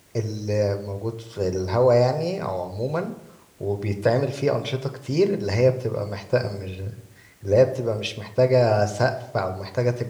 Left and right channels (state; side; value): identical; both; correlation 1.00